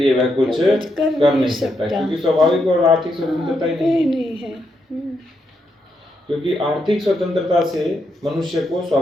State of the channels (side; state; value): both; normal; correlation 0.80